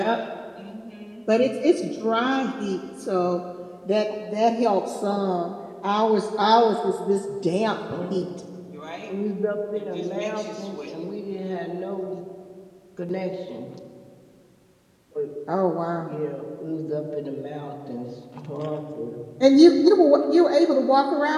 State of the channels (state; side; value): identical; both; correlation 1.00